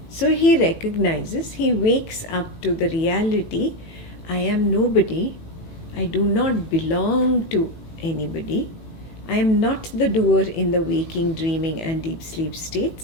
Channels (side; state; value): right; late; 18 ms